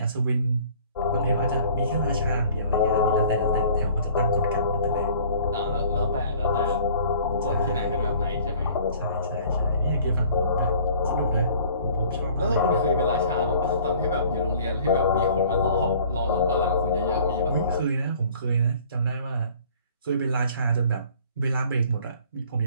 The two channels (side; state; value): both; inverted; correlation -0.51